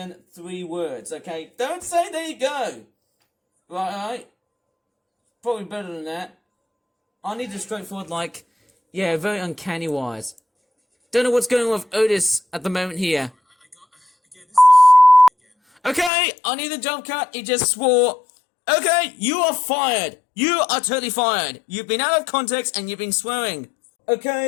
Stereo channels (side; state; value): right; drops out; at 16.1 s